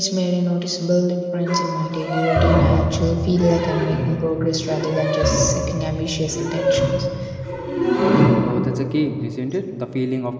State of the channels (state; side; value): identical; both; correlation 1.00